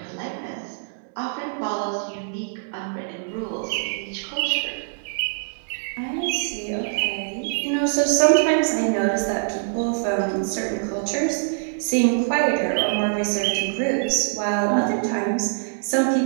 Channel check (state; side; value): silent; left; digital silence